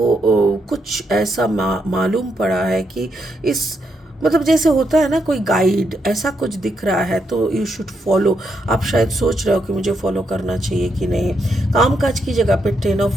कुछ ऐसा मालूम पड़ा है कि इस मतलब जैसे होता है ना कोई गाइड ऐसा कुछ दिख रहा है तो यू शुड फॉलो। आप शायद सोच रहे हो कि मुझे फॉलो करना चाहिए कि नहीं। कामकाज की जगह पे 10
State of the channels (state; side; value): normal; both; correlation 0.80